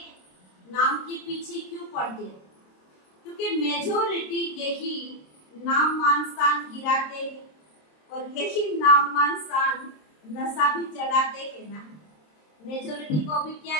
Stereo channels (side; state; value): right; late; 26 ms